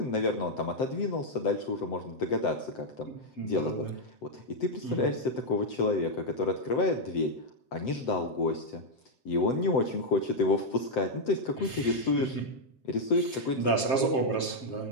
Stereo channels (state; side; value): late; right; 7.5 ms